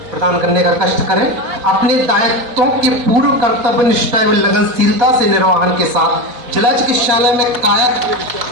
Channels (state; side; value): late; left; 4.4 ms